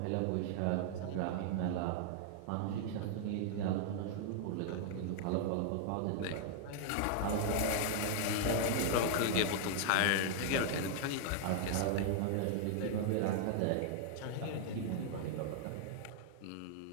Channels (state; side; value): different; both; correlation -0.01